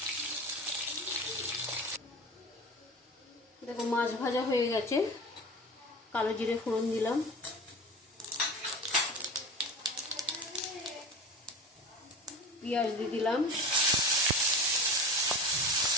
দেখো, মাছ ভাজা হয়ে গেছে। কালো জিরে ফোড়ন দিলাম, পেঁয়াজ দিয়ে দিলাম,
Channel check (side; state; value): both; normal; correlation 0.32